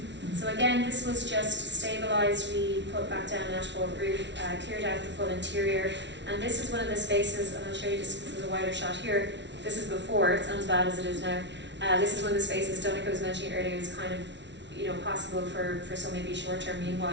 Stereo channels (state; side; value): late; left; 0.51 ms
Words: So again, this was just stabilised. We put back down an asphalt roof, cleared out the full interior, and this is one of the spaces, and I'll show you just because there's a wider shot here. This is before, it's not as bad as it is now. This is one of the spaces Donnacha was mentioning earlier is kind of, you know, possible for some maybe short-term